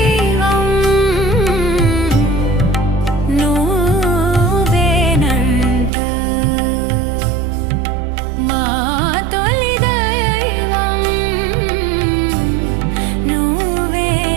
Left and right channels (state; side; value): drops out; left; at 5.9 s